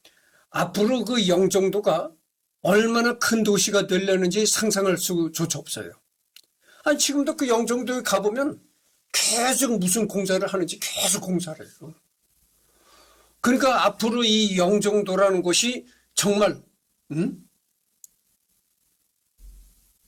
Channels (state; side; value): identical; both; correlation 1.00